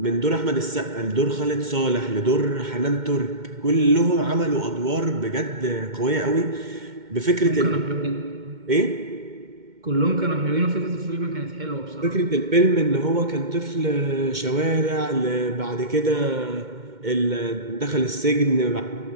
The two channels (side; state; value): left; late; 2.1 ms